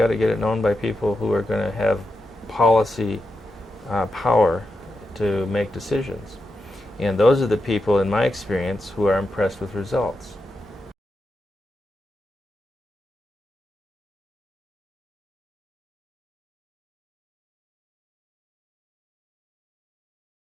to get it known by people who are going to have policy power to make decisions. And those are the people, in my experience, who are impressed with results.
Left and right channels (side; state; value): both; normal; correlation 0.87